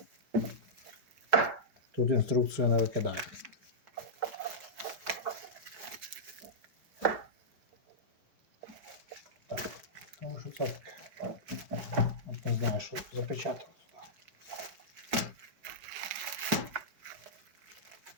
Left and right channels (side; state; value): left; late; 5.1 ms